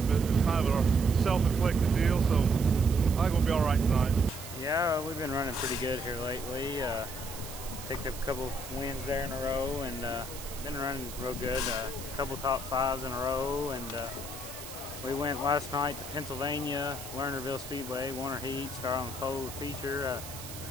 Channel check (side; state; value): right; noise; hiss, 12 dB below the sound